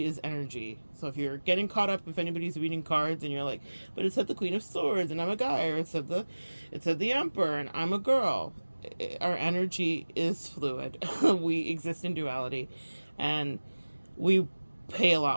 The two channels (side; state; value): both; inverted; correlation -1.00